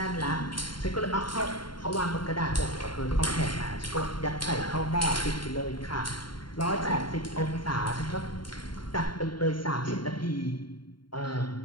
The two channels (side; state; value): right; late; 0.72 ms